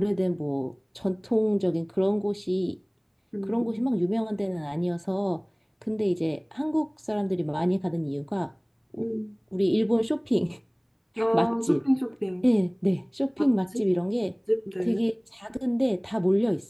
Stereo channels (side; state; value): both; identical; correlation 1.00